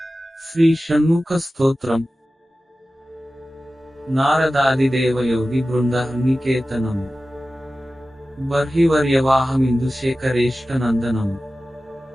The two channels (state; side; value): normal; both; correlation 0.95